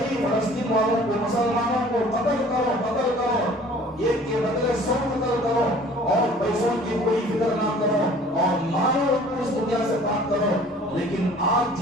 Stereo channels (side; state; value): both; normal; correlation 0.50